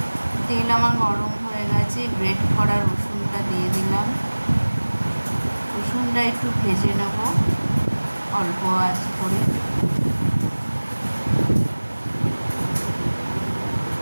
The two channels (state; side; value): inverted; both; correlation -1.00